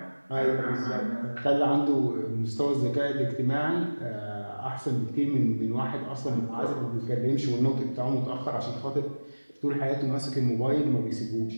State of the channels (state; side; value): inverted; both; correlation -1.00